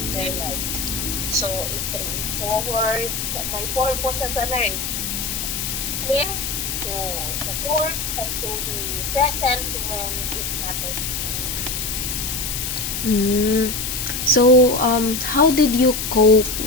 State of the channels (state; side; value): noise; left; hiss, 3 dB below the sound